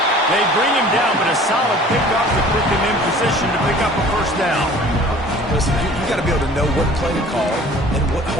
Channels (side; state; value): both; normal; correlation 0.48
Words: They bring him down, but a solid pickup to put them in position to pick up a first down. Listen, you got to be able to know what play to call and what